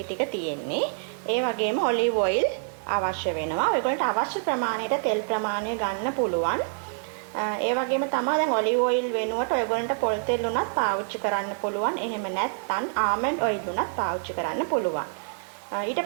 ටික තියෙන්නේ. ඒ වගේම ඔලිව් ඔයිල් අවශ්‍ය වෙනවා. ඔයගොල්ලන්ට අවශ්‍ය ප්‍රමාණයට තෙල් ප්‍රමාණය ගන්න පුළුවන්. ඒ වගේම තමයි දැන් ඔලිව් ඔයිල් වෙනුවට ඔයගොල්ලන්ට පොල් තෙල් උනත් පාවිච්චි කරන්න පුළුවන්. එහෙම නැත්නම් ආමන්ඩ් ඔයිල් උනත් පාවිච්චි කරන්න පුළුවන්. ඊට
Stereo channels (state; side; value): silent; left; digital silence